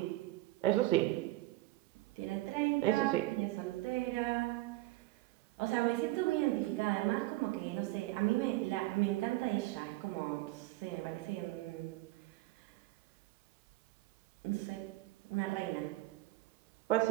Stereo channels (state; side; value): quieter; left; 18.3 dB